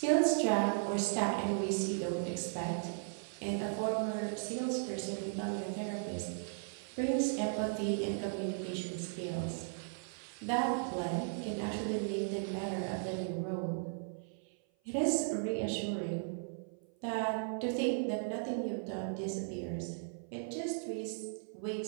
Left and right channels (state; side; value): silent; left; 53 dB below the other